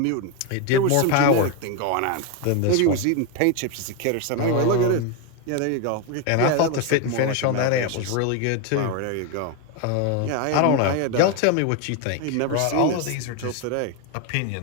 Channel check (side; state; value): both; different; correlation 0.02